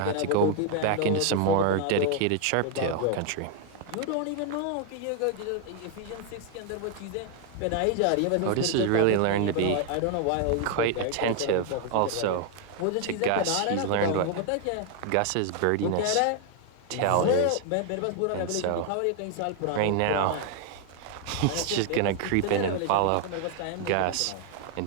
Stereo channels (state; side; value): different; both; correlation 0.00